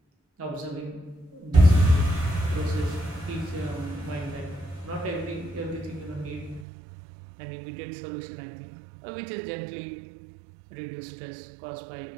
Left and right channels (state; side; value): drops out; left; at 6.7 s